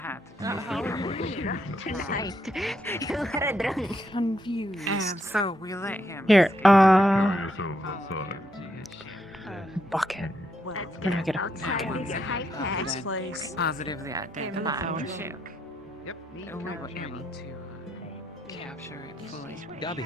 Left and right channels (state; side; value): normal; both; correlation 0.78